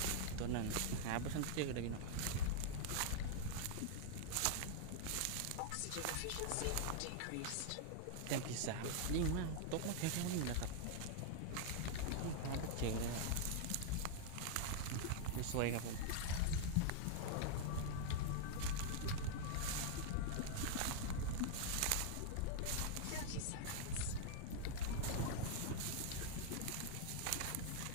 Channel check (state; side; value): different; both; correlation -0.01